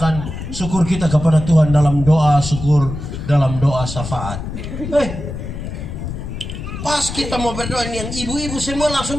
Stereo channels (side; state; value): left; noise; rumble, 7 dB below the sound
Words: syukur kita kepada Tuhan dalam doa syukur, dalam doa syafaat. Pas kita mau berdoa ini yang ibu-ibu semua langsung